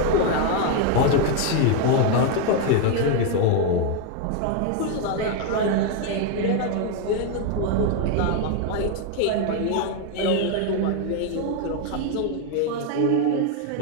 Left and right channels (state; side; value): different; both; correlation 0.01